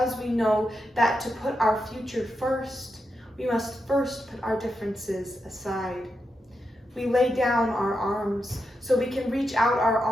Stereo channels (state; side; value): normal; both; correlation 0.86